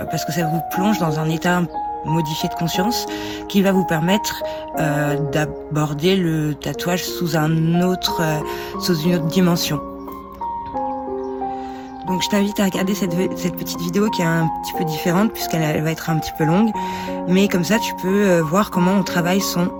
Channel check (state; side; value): identical; both; correlation 1.00